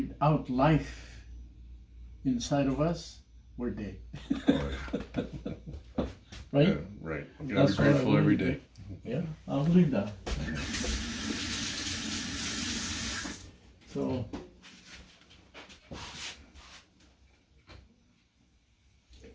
life inside of us, we're dead. Oh, yeah. Right? Yeah, right. You gotta be That's what I grateful every believe. day. Yeah, I'll believe that. So,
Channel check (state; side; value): identical; both; correlation 1.00